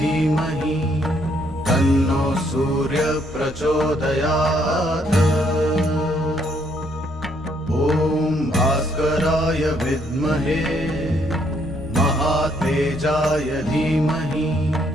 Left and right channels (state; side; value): noise; right; rumble, 25 dB below the sound